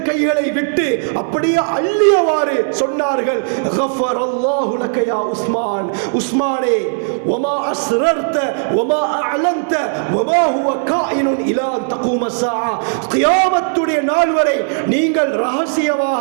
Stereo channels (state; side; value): silent; left; 69 dB below the other